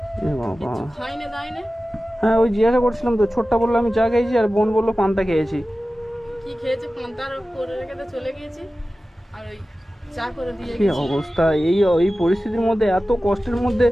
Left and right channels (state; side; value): normal; both; correlation 0.95